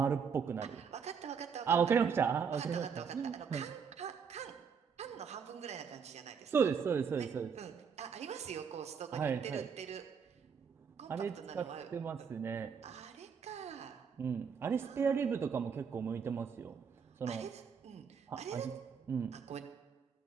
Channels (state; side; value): quieter; left; 6.5 dB